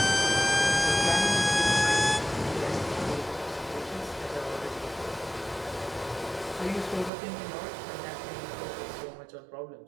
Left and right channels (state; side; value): drops out; left; at 7.1 s